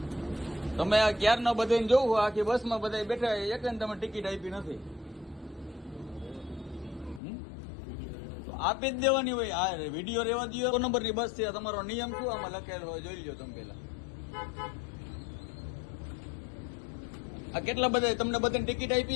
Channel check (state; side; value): drops out; right; at 7.2 s